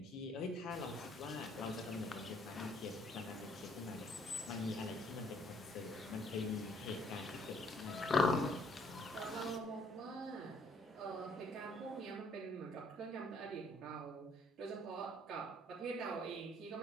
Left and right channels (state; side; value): normal; both; correlation 0.64